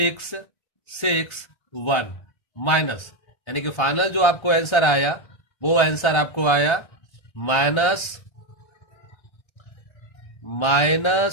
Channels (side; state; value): right; late; 1.3 ms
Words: 6, 1 माइनस, यानी कि फाइनल जो आपको आंसर आया वो आंसर आपको आया